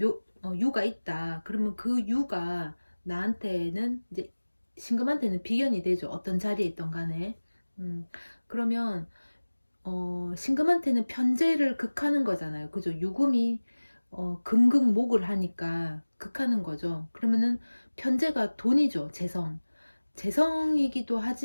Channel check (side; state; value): both; inverted; correlation -1.00